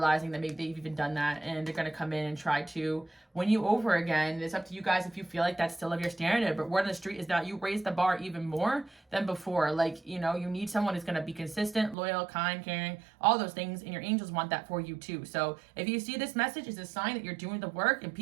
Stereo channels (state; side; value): drops out; left; at 12.0 s